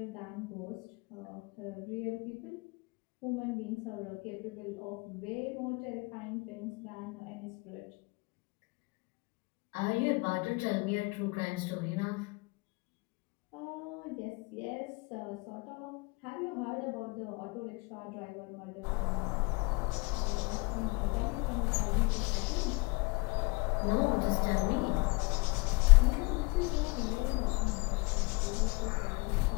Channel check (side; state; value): right; quieter; 27.5 dB